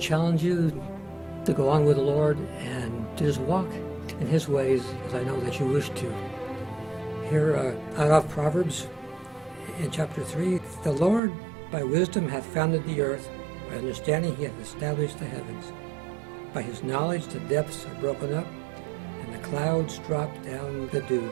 you to go on with the Lord and to just walk in His ways, as I know that you wish to. Here out of Proverbs in chapter 3, "The Lord by wisdom hath founded the earth, by understanding He hath established the heavens. By His knowledge the depths are broken up, and the clouds drop down the dew.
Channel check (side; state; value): left; drops out; at 11.2 s